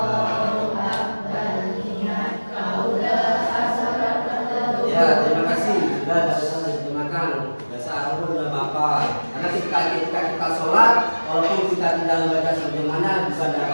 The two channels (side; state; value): both; inverted; correlation -1.00